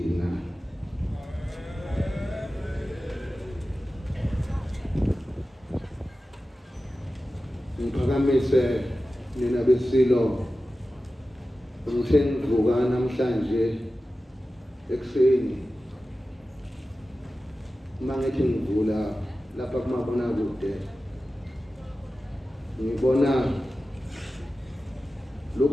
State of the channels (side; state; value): both; normal; correlation 0.94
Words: Ngiphakamise nina beSilo ngithe ngivuka namhlanje ekuseni mangithi ngivula lapha kumabonakude ngibona